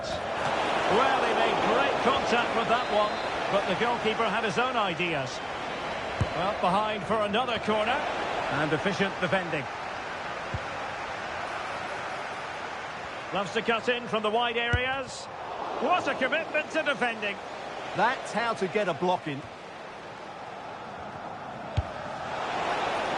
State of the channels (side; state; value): both; identical; correlation 1.00